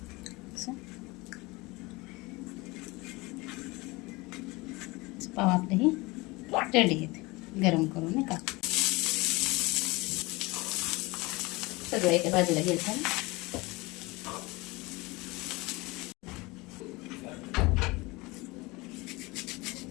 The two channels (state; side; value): quieter; right; 23.4 dB